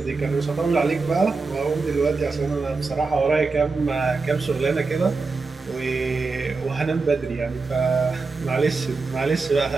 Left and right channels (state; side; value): quieter; left; 4.1 dB